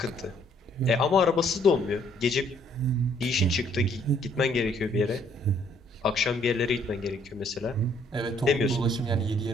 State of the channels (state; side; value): normal; both; correlation 0.65